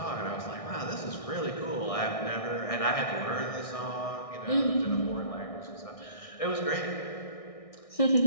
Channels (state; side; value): late; right; 1.6 ms